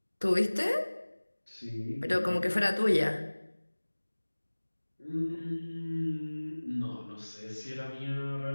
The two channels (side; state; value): both; inverted; correlation -1.00